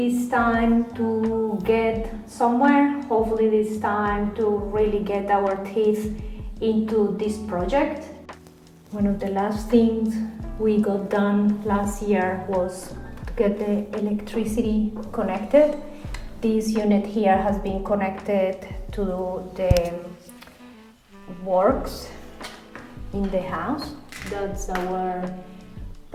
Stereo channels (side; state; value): both; identical; correlation 1.00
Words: time to get somewhere, hopefully this time to really get our teeth into this project. One of the last things we got done last year was to get the electricity connected. This unit here has been connected to the works in the house. That's our